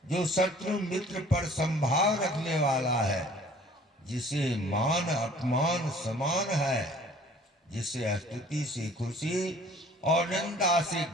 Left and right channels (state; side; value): normal; both; correlation 0.52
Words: जो शत्रु मित्र पर संभाव रखने वाला है, जिसे मान अपमान समान है, जिसे स्तुति से खुशी और निंदा से